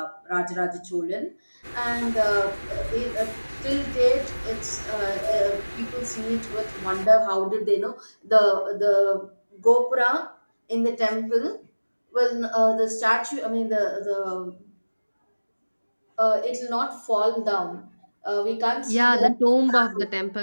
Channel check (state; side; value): inverted; both; correlation -1.00